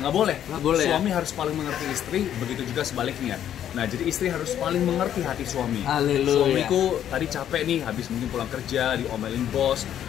boleh. Suami harus paling mengerti istri, begitu juga sebaliknya. Nah jadi istri harus paling mengerti hati suami. Suamiku tadi capek nih, habis mungkin pulang kerja, diomelin bos,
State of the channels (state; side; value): quieter; right; 10.4 dB